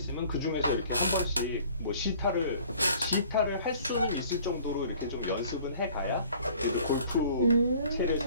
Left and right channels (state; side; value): inverted; both; correlation -0.53